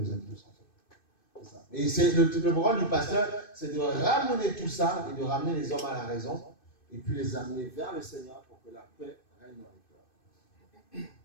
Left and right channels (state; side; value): late; right; 2.6 ms